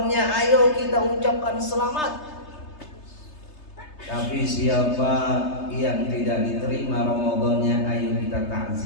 ayo kita ucapkan selamat. Tapi siapa yang tidak diterima Ramadannya, ayo kita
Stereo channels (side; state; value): right; late; 3.3 ms